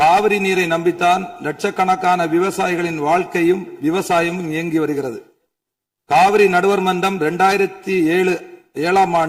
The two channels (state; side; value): identical; both; correlation 1.00